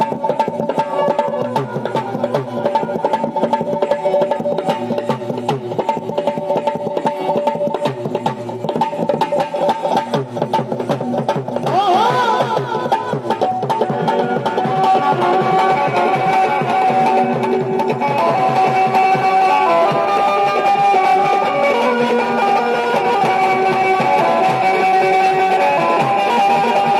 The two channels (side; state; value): both; identical; correlation 1.00